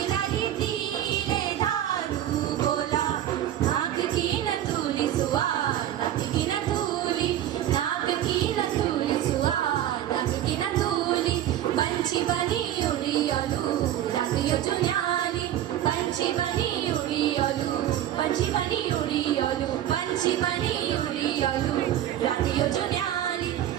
लाली तिले धारू बोला नाक की न तूली सुआ नाक की न तूली नाक की न तूली सुआ नाक की न तूली पंछी बनी उड़ी ओलू रंग यो जुन्याली पंछी बनी उड़ी ओलू पंछी बनी उड़ी ओलू पंछी बनी उड़ी ओलू रात यो जुन्याली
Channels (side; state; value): left; quieter; 11.9 dB